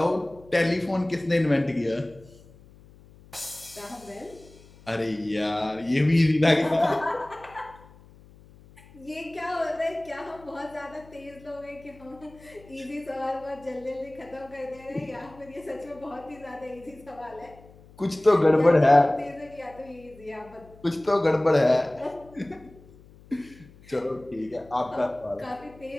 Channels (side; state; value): left; noise; hum, 23 dB below the sound